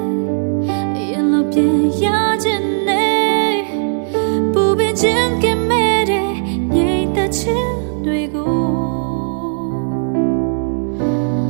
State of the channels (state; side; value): silent; left; digital silence